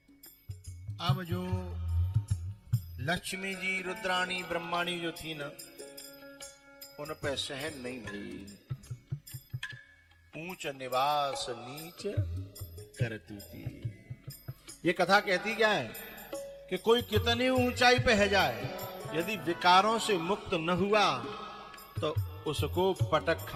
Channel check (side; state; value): both; identical; correlation 1.00